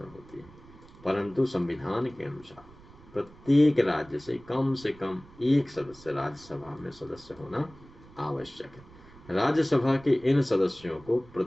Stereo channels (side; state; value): right; noise; rumble, 22 dB below the sound